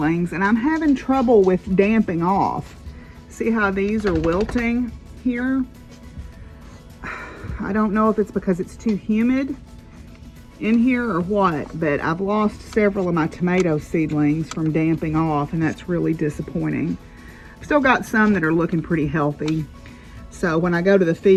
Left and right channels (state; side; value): identical; both; correlation 1.00